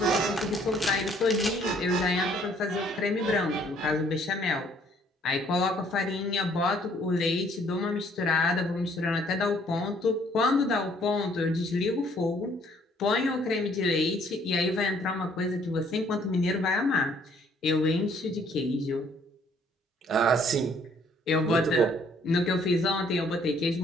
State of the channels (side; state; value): both; normal; correlation 0.63